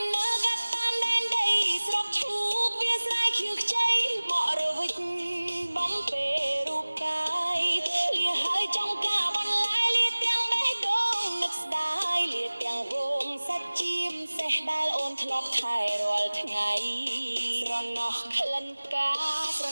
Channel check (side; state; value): both; inverted; correlation -1.00